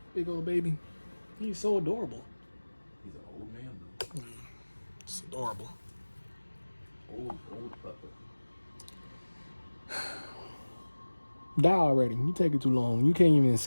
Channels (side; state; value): both; inverted; correlation -1.00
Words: Big old baby. He's so adorable. He's an old man, though. It's adorable. Old pupper. Die already. You take it too long. You can't even